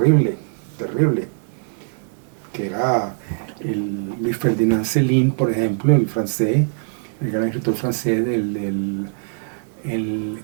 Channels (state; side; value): silent; left; 61 dB below the other